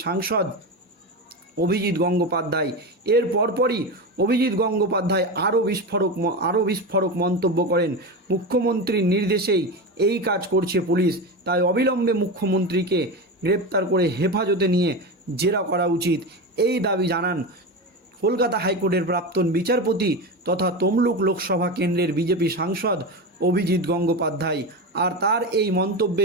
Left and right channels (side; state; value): both; normal; correlation 0.20